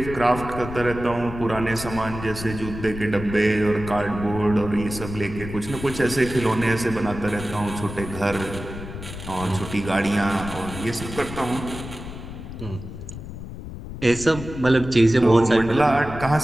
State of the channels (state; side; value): noise; left; rumble, 10 dB below the sound